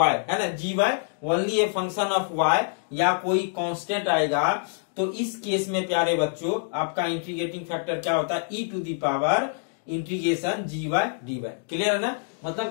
है ना, g y only a function of y, या कोई कांस्टेंट आएगा, तो इस केस में प्यारे बच्चों आपका इंटीग्रेटिंग फैक्टर क्या होता है, e to the power integration g y d y, clear है ना।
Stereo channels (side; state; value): right; silent; digital silence